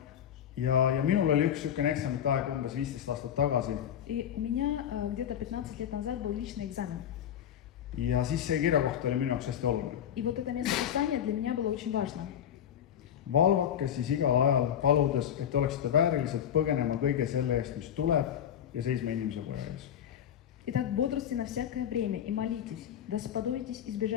minul oli üks niisugune eksamite aeg umbes 15 aastat tagasi. И у меня где-то 15 лет назад был личный экзамен. Ja siis see kirjakoht oli minu jaoks hästi oluline. И вот это место Писания для меня было очень важно. Valvake siis igal ajal paludes, et oleksite väärilised põgenema kõige selle eest, mis tuleb ja seisma inimese poja ees. Итак, бодрствуйте на всякое время и молитесь, да сподобитесь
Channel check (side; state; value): right; quieter; 9.6 dB